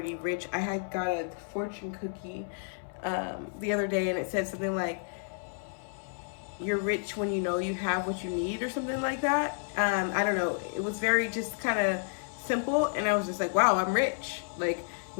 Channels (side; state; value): right; silent; 57 dB below the other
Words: rich. I had got a fortune cookie the other day, and it said something like, you're rich when you know you have what you need, or something like that. I don't know. It was very just kind of simple, and I was just like, wow, I'm rich. Like,